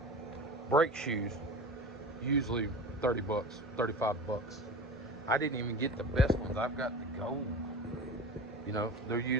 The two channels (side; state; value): both; normal; correlation 0.33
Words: Brake shoes, usually $30, $35. I didn't even get the best ones. I've got the gold. You know, they're